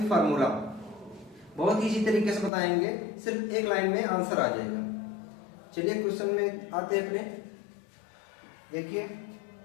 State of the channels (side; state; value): right; drops out; at 2.5 s